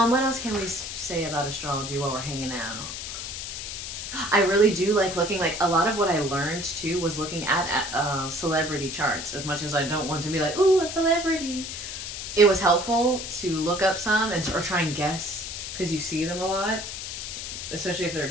what else can we say about astrology while we're hanging out? I really do like looking, like a lot of what I learned too was looking at celebrity charts. As much as I don't want to be like, ooh, a celebrity, it was helpful to look up some or try and guess, because you see them a lot, especially if they're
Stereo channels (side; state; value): left; noise; hiss, 7 dB below the sound